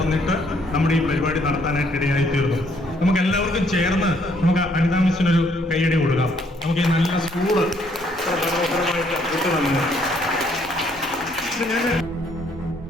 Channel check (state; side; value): normal; both; correlation 0.67